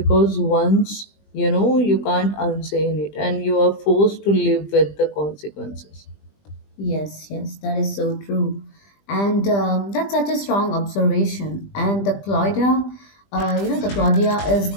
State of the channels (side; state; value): right; late; 20 ms